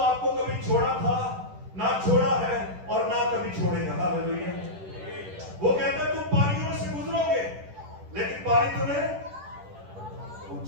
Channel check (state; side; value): late; left; 10 ms